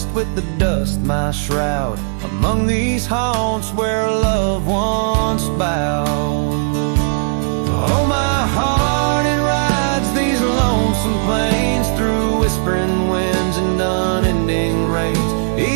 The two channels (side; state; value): left; silent; digital silence